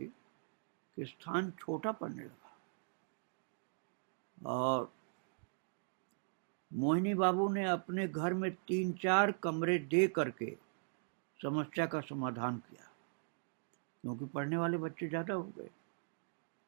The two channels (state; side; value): silent; left; digital silence